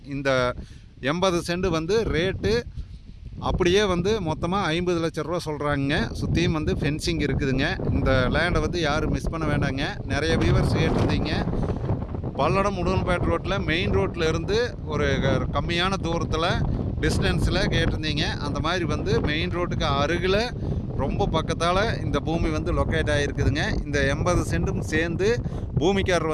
இந்த 80 சென்ட் வந்து ரேட்டு அப்படியே வந்து மொத்தமாக 50 லட்ச ரூபா சொல்கிறாங்க. சுற்றியும் வந்து ஃபென்சிங் இருக்குதுங்க. இந்த லேண்டை வந்து யாரும் மிஸ் பண்ண வேண்டாங்க. நிறைய வியூவர்ஸ் கேட்டிருந்தீங்க. பல்லடம் உடுமலைப்பேட்டை ரோட்டில் மெயின் ரோட்டில் இருந்து ஒரு கம்மியான தூரத்தில் டிஸ்டன்ஸில் கேட்டிருந்தீங்க. அந்த மாதிரி வந்து மெயின் ரோட்டுக்கு அருகில் ரொம்ப பக்கத்தால் இந்த பூமி வந்து லொக்கேட் ஆகிருக்குதுங்க. இந்த 80 சென்ட்டும் சேர்ந்து பூமிக்காரர்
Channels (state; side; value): identical; both; correlation 1.00